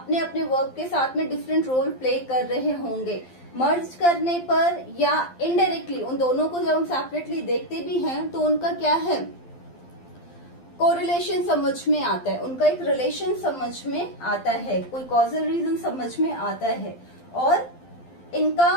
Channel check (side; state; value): right; late; 12 ms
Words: अपने वर्ब के साथ में डिफरेंट रोल प्ले कर रहे होंगे। मर्ज करने पर या इनडायरेक्टली उन दोनों को जब हम सेपरेटली देखते भी हैं तो उनका क्या है, कोरिलेशन समझ में आता है, उनका एक रिलेशन समझ में आता है, कोई कॉजल रीजन समझ में आता है और